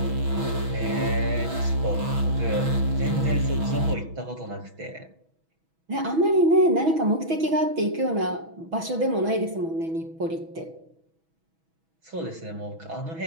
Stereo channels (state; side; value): late; left; 6.2 ms